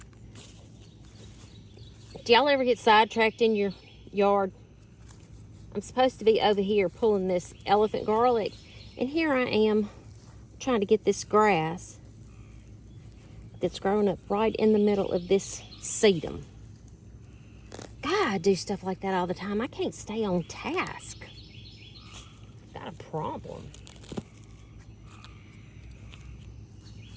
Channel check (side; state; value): both; identical; correlation 1.00